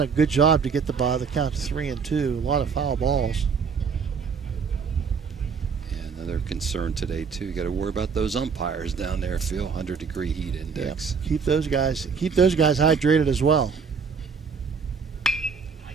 a good job to get the count to 3 and 2. A lot of foul balls. Another concern today too. You got to worry about those umpires down there, Phil. 100-degree heat index. Yep. Keep those guys hydrated as well.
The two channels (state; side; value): quieter; left; 5.8 dB